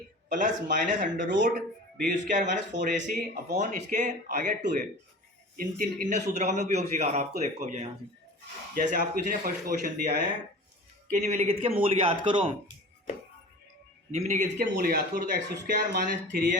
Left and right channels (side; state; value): both; normal; correlation 0.38